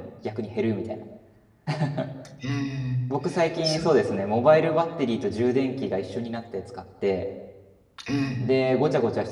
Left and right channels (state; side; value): identical; both; correlation 1.00